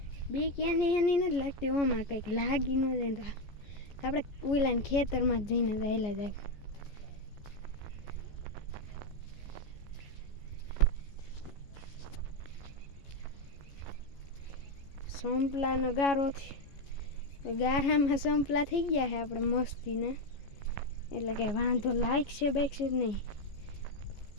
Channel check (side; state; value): right; late; 14 ms